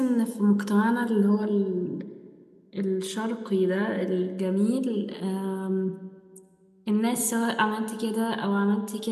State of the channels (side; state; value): both; identical; correlation 1.00